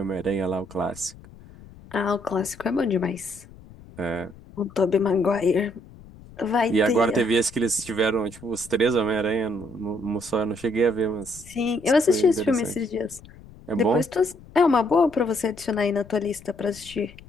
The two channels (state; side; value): noise; left; rumble, 21 dB below the sound